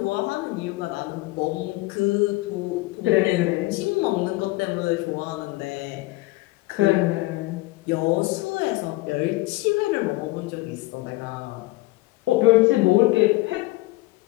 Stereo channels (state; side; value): quieter; right; 20.3 dB